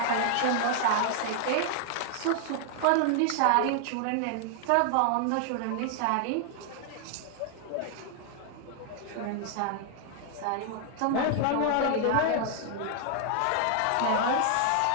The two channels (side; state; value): both; different; correlation 0.00